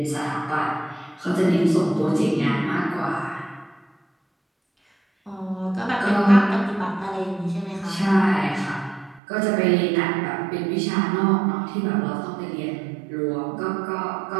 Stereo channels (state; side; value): drops out; left; at 9.2 s